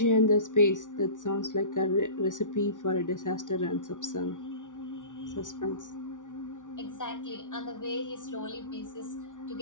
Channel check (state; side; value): late; right; 0.87 ms